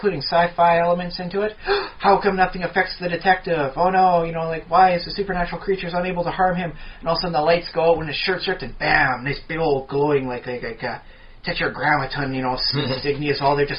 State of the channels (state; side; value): identical; both; correlation 1.00